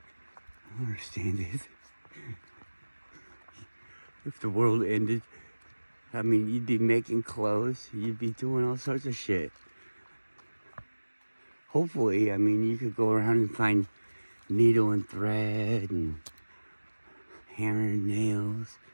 I don't understand it. If the world ended, I mean, you'd be making clothes, you'd be doing all sorts of shit. Hopefully, I mean, you could go around and find needle and thread and hammer and nails,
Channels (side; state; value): both; inverted; correlation -1.00